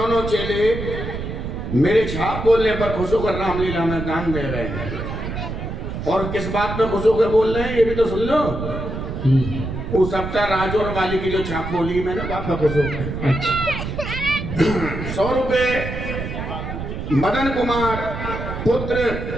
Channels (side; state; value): right; noise; rumble, 6 dB below the sound